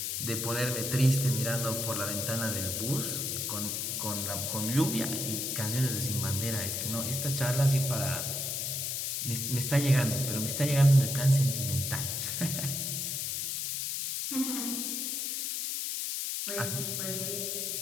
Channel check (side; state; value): left; noise; hiss, 1 dB below the sound